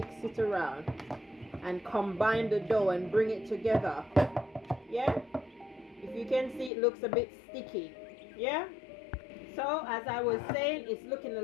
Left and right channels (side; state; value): right; drops out; at 6.7 s